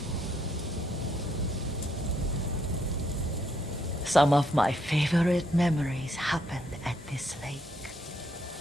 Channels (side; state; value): both; normal; correlation 0.73